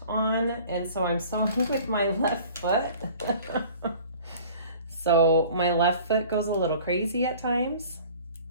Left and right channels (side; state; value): both; inverted; correlation -0.46